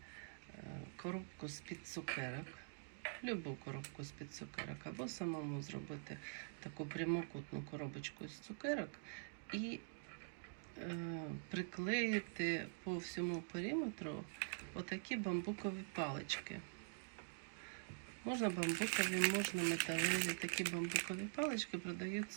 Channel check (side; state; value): left; silent; digital silence